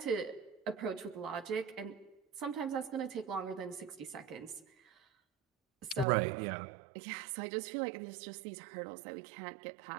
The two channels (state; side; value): drops out; left; at 6.1 s